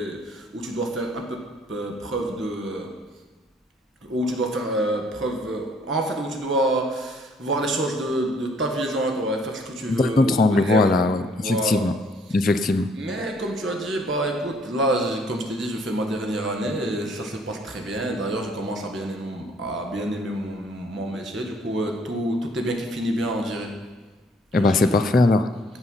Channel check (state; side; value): normal; both; correlation 0.63